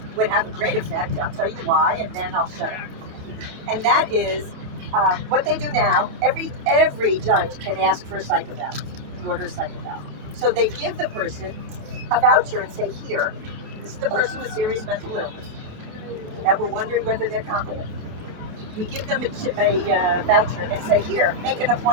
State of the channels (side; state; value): left; late; 28 ms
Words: would have a great effect. I'll tell you why, and then I'll shut up. And that is what they do now. Every judge can ask for a psych eval, order a psych eval. So they give the person a voucher and say, here, this is the person with serious mental illness that we're wondering whether they're competent. We give them a voucher and say, here, make an